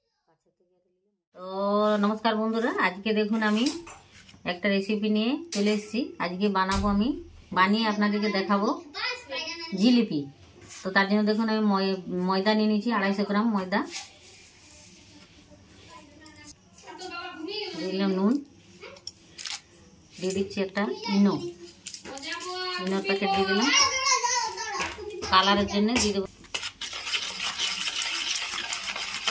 তো নমস্কার বন্ধুরা, আজকে দেখুন আমি একটা রেসিপি নিয়ে চলে এসেছি। আজকে বানাবো, আমি বানিয়ে আপনাদেরকে দেখাবো জিলিপি। তো তার জন্য দেখুন আমি ময়দা নিয়ে নিয়েছি, 250 গ্রাম ময়দা, দিলাম নুন, দিয়ে দিচ্ছি একটা ইনোর প্যাকেট দিয়ে দিলাম, কালারের জন্য দিয়ে দেবো।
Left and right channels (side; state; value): both; identical; correlation 1.00